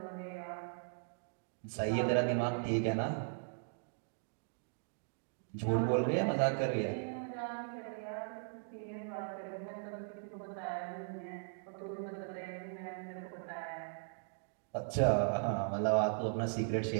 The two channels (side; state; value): left; silent; digital silence